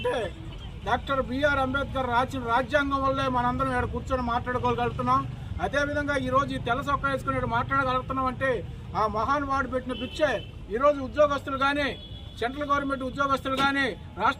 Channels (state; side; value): identical; both; correlation 1.00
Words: డాక్టర్ బిఆర్ అంబేద్కర్ రాసిన రాజ్యాంగం వల్లే మనందరం ఇక్కడ కూర్చొని మాట్లాడుకోగలుగుతున్నాం. అదేవిధంగా ఈరోజు ఈ తెల్ల సొక్కా వేసుకుని మాట్లాడగలుగుతున్నాం అంటే ఆ మహానుభావుడు పెట్టిన పిచ్చే. ఈరోజు ఉద్యోగస్తులు కానీ, సెంట్రల్ గవర్నమెంట్ ఉద్యోగస్తులు కానీ,